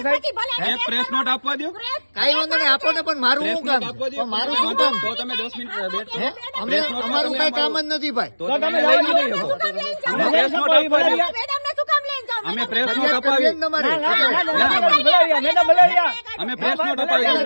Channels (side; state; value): both; inverted; correlation -1.00